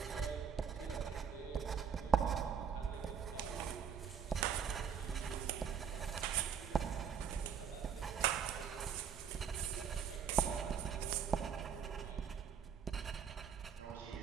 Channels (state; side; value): quieter; left; 7.3 dB